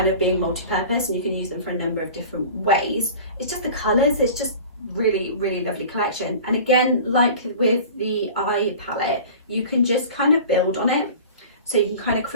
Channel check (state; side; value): inverted; both; correlation -0.39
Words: of being multi-purpose, and you can use them for a number of different ways, it's just the colours. It's just really, really lovely collection. And again, like with the eye palette, you can just kind of build on it. So you can kind of